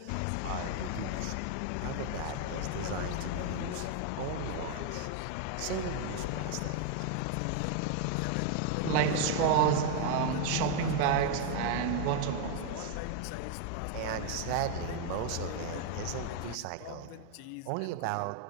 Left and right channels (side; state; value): both; different; correlation 0.00